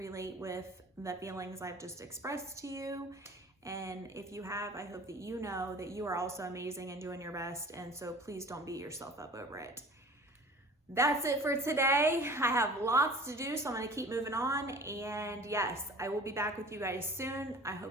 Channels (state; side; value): normal; both; correlation 0.44